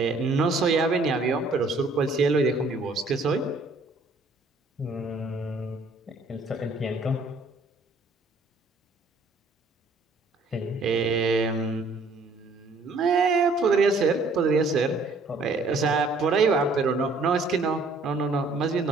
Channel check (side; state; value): left; quieter; 3.2 dB